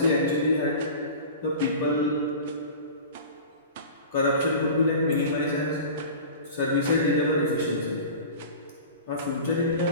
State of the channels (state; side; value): inverted; both; correlation -0.36